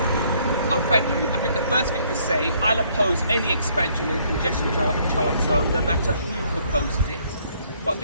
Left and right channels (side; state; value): both; inverted; correlation -0.65